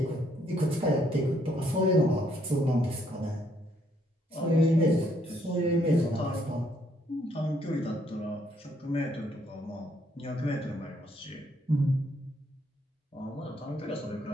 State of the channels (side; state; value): both; normal; correlation 0.69